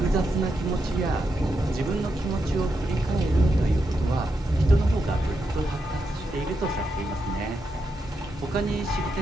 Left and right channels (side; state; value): both; normal; correlation 0.84